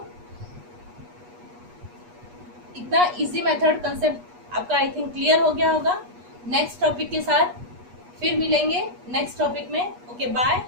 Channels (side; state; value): left; late; 8.3 ms